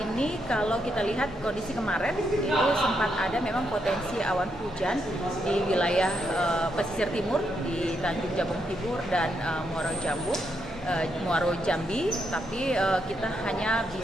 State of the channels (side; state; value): both; normal; correlation 0.79